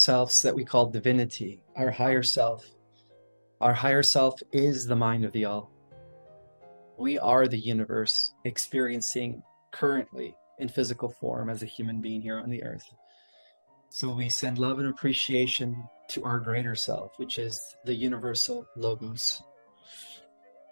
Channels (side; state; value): both; inverted; correlation -1.00